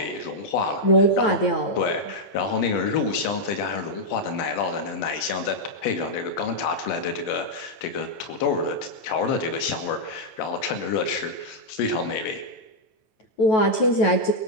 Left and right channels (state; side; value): late; right; 9.2 ms